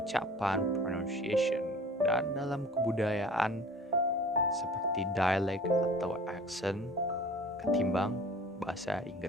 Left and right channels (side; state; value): both; normal; correlation 0.45